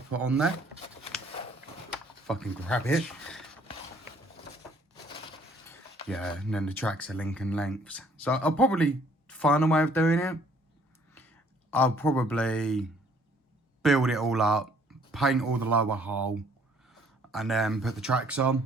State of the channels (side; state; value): both; normal; correlation 0.61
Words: put on there. Fucking grab it. Yeah, and then the tracks are Lincoln lengths. So I'll probably find a way of doing it. I'll probably build it all up, paint all the lower hull, and then put the tracks